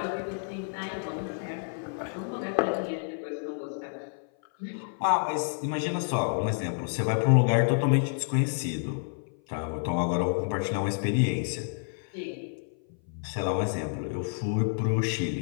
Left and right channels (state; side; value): silent; right; 56 dB below the other